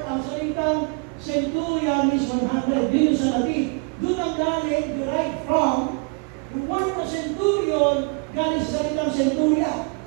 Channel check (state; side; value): quieter; left; 32.9 dB